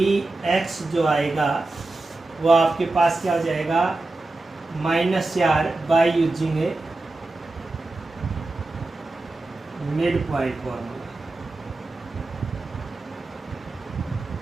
जो आएगा वो आपके पास क्या हो जाएगा, -4 by using A mid point formula.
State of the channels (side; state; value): left; quieter; 3.2 dB